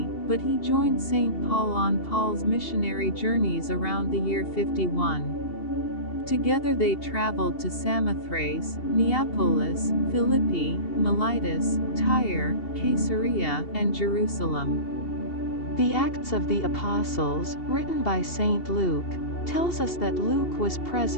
but he joined St. Paul on Paul's missionary journeys around the year 51. Together they traveled to Samothrace, Neapolis, Philippi, Melitus, Tyre, Caesarea, and Jerusalem. The Acts of the Apostles, written by St. Luke, tells us that Luke was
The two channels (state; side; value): late; right; 2.7 ms